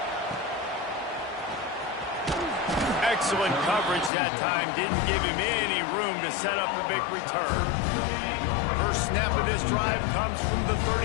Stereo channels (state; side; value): drops out; right; at 4.1 s